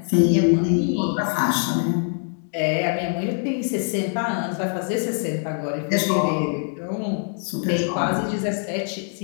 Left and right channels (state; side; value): silent; right; 59 dB below the other